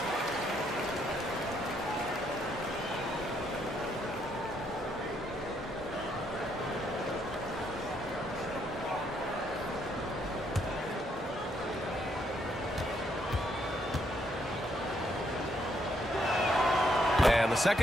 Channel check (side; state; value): both; normal; correlation 0.73